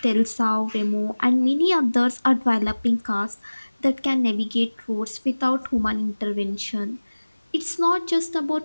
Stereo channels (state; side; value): inverted; both; correlation -1.00